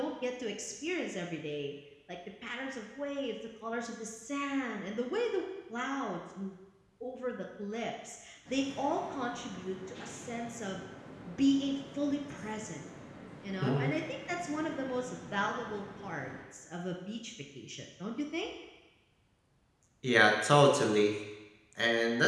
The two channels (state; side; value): identical; both; correlation 1.00